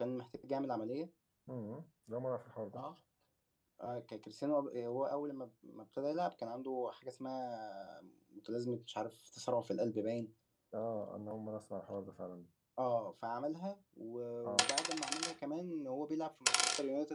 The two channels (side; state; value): both; identical; correlation 1.00